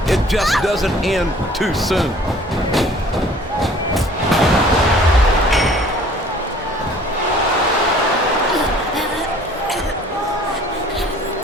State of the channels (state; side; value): normal; both; correlation 0.52